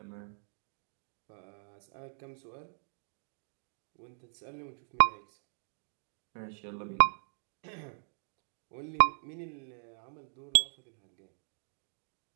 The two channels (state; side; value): silent; left; digital silence